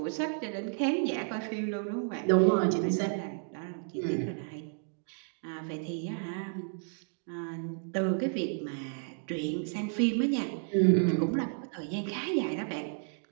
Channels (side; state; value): left; silent; 56 dB below the other